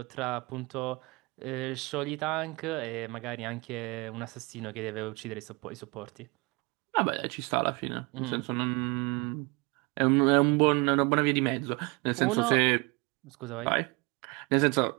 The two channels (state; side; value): quieter; left; 27.7 dB